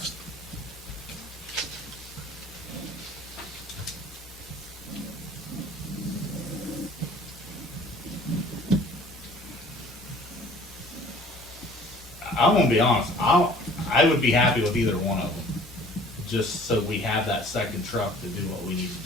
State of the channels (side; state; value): both; normal; correlation 0.51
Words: I'm gonna be honest. I would be happy with either one of them, just so we have that second truck to do what we need